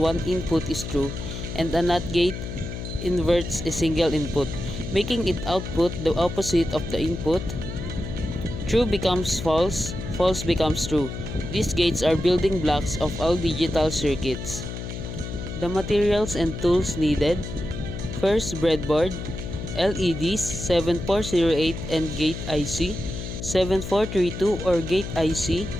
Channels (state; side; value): noise; left; hum, 7 dB below the sound